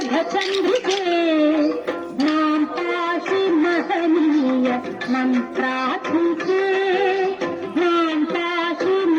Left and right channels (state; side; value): identical; both; correlation 1.00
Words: नाम पाहि महनीय मंत्रात्मिके नाम पाहि